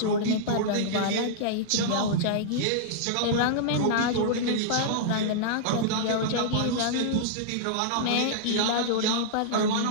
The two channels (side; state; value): both; different; correlation -0.02